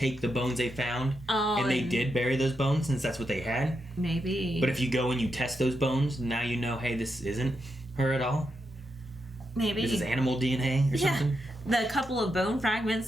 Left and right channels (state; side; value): normal; both; correlation 0.85